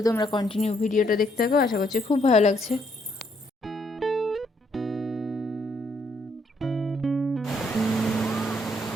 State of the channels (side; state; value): both; normal; correlation 0.71